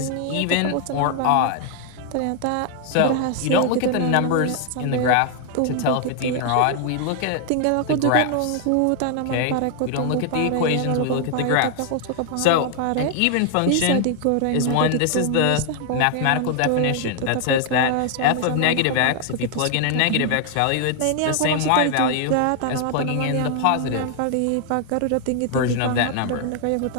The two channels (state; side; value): different; both; correlation 0.00